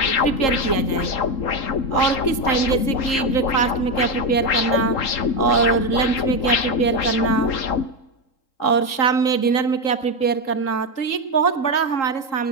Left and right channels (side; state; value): right; late; 3.8 ms